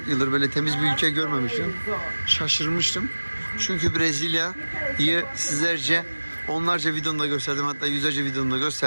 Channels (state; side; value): inverted; both; correlation -1.00